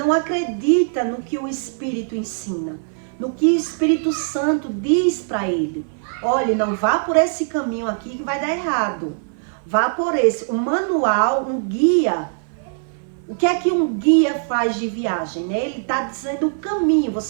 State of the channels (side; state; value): left; silent; 56 dB below the other